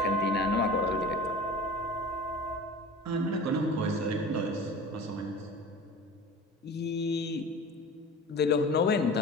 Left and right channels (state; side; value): normal; both; correlation 0.37